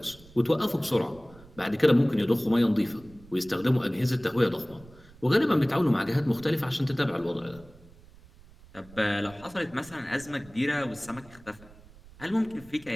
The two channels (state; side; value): noise; right; rumble, 23 dB below the sound